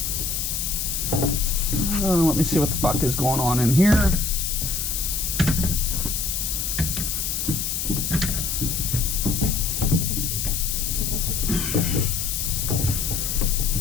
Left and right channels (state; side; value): noise; left; hiss, 1 dB below the sound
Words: Let me see what the fuck is going on in here.